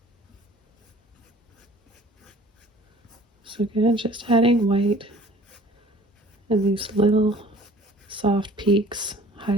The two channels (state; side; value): normal; both; correlation 0.50